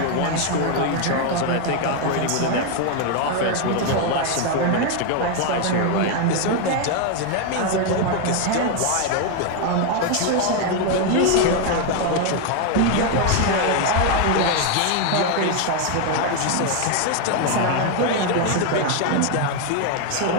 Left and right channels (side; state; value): both; different; correlation 0.01